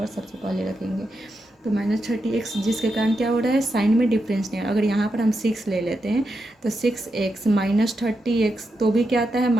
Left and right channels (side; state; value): both; normal; correlation 0.86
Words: सबसे पहले रखेंगे। तो -30x जिसके कारण क्या हो रहा है, साइन में डिफरेंस नहीं है। अगर यहाँ पर हम 6 ले लेते हैं तो 6x -30x तो भी क्या आता है